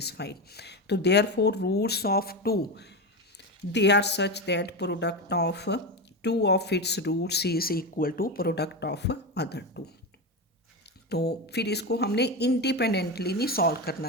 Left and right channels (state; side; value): normal; both; correlation 0.17